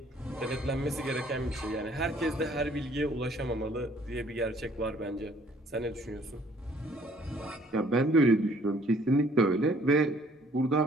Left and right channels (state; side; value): normal; both; correlation 0.60